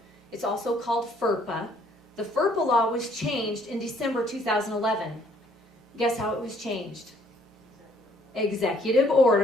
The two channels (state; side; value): normal; both; correlation 0.63